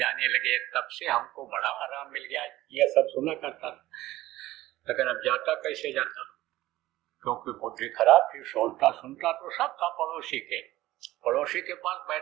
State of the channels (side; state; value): left; quieter; 16.4 dB